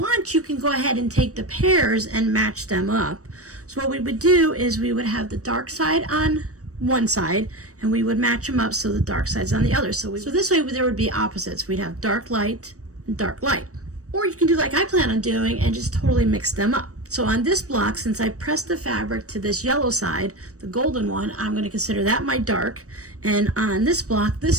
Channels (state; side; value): late; left; 0.66 ms